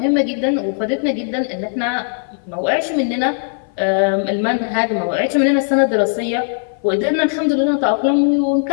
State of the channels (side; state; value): right; silent; 59 dB below the other